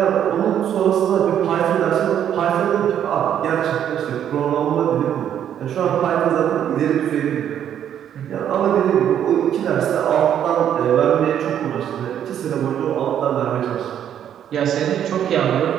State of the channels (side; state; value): left; quieter; 9.8 dB